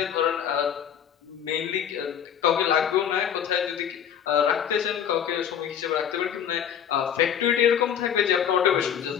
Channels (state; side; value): quieter; right; 8.9 dB